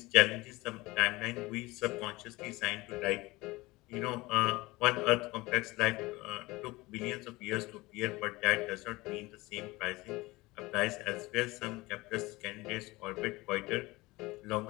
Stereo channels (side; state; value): right; quieter; 21.3 dB